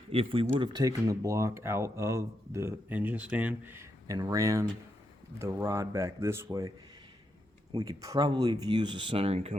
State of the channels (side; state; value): both; normal; correlation 0.83